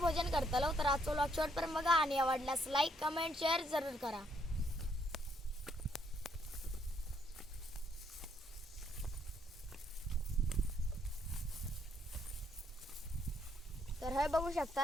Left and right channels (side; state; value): both; normal; correlation 0.72